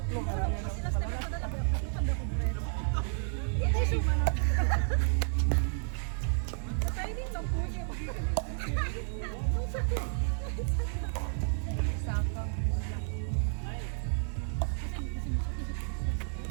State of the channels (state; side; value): silent; left; digital silence